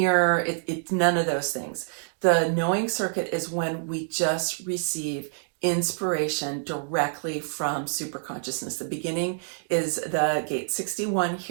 It's none of those things. The knowing circuit is when we just receive inspiration directly from superconsciousness. The beginning is the gate 61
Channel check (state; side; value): silent; left; digital silence